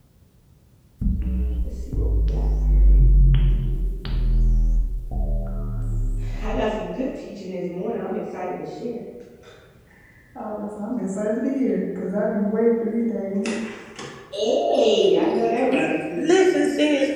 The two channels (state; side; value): identical; both; correlation 1.00